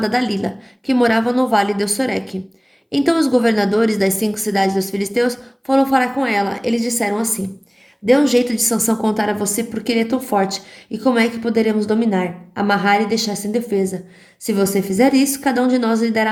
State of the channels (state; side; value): identical; both; correlation 1.00